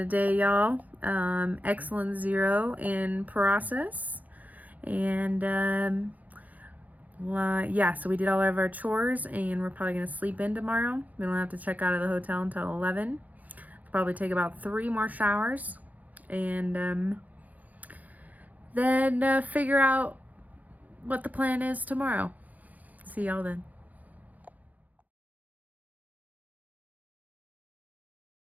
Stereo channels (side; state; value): left; late; 0.079 ms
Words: day, y'all. Excellent 0 in process. And yeah, so we did all of our chores, and we're probably going to sleep in tomorrow. We don't have to check out of the hotel until 11. Probably take about 3 more showers, and then figure out what the plan is tomorrow. See y'all then.